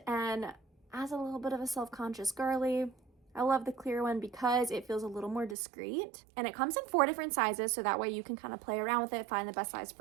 and as a little bit of a self-conscious girly, I love the clear one because it feels a little more discreet, and it comes in 4 different sizes, so that way you can kind of play around with it, find the best size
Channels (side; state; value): left; drops out; at 5.6 s